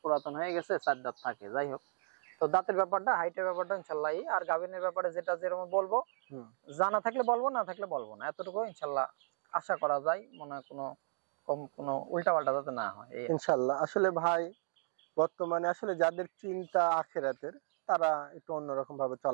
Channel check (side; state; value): left; silent; digital silence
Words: পুরাতন হয়ে গেছে, 4 দাঁত থাকে, যাই হোক। তো দাঁতের ব্যাপারটা, হাইটের ব্যাপারটা ইনশাআল্লাহ। আর গাভিনের ব্যাপারে যেটা যেরকম বলবো, জানা থাকলে বলবো, না থাকলে বলবো না, এতটুকু ইনশাআল্লাহ আশা করা যায়। মনে হয় কোনো উল্টা পাল্টা যাতে না হয় ইনশাআল্লাহ। আসলে ভাই বর্তমানে আসলে যাদের চিন্তা আখিরাতের, তারা একটু অন্যরকম ভাবে